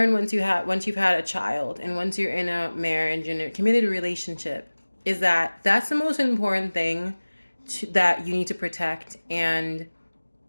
once you've had a child and once you're in a marriage and a committed relationship is that that's the most important thing that you need to protect. And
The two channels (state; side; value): inverted; both; correlation -1.00